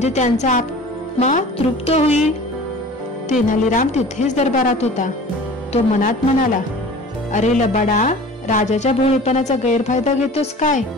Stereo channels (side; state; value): both; normal; correlation 0.42